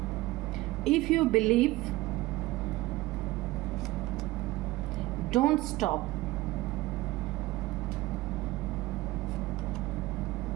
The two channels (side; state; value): left; quieter; 18.6 dB